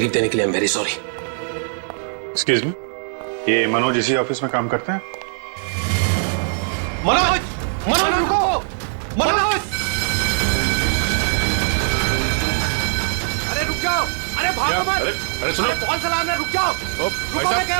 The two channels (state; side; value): silent; left; 63 dB below the other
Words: देने के लिए। I am very sorry. Excuse me, ये मनोज इसी ऑफिस में काम करते हैं? मनोज, मनोज रुको, मनोज! अरे रुक जाओ, अरे भागो मत! अरे सुनो, कौन सा अलार्म है? रुक जाओ, रुको, मैं कह